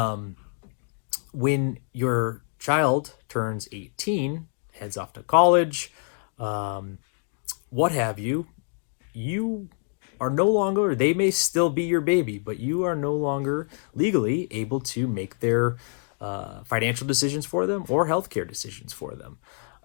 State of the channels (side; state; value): right; silent; 57 dB below the other